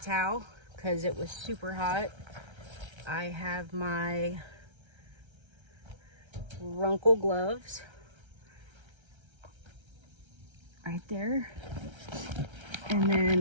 because it was super hot. I have my Runcl gloves right there. And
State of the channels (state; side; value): late; left; 1.3 ms